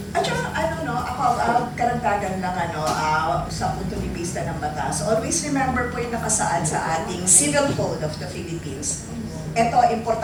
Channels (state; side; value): identical; both; correlation 1.00